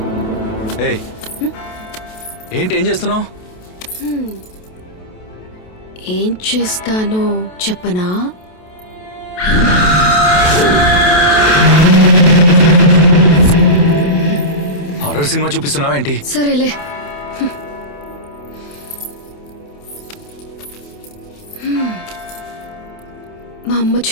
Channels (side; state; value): right; late; 28 ms